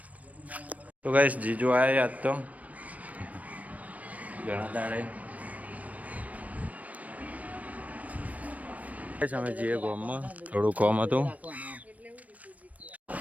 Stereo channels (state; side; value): late; left; 0.070 ms